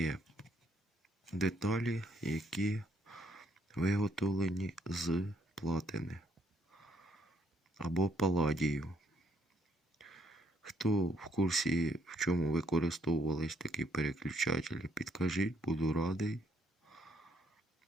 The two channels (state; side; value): normal; both; correlation 0.70